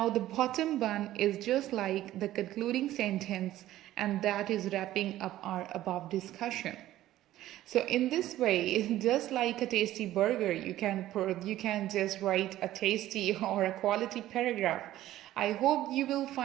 the bottom bun is just like the concluding sentence, and that is wrapping up our above discussion. So in this way, just like a tasty burger, you can just write a tasty or a quality paragraph. I hope you will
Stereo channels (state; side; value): quieter; left; 14.2 dB